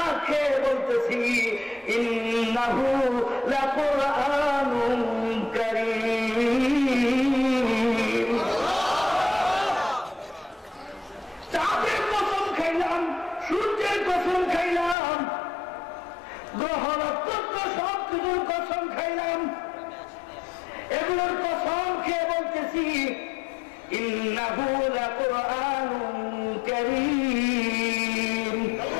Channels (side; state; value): right; drops out; at 15.0 s